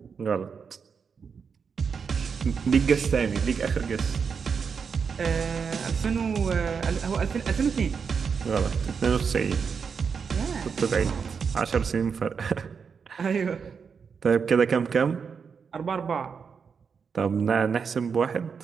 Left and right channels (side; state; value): left; quieter; 6.1 dB